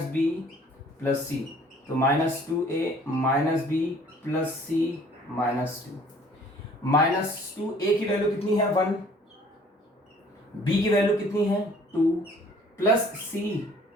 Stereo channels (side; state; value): both; normal; correlation 0.55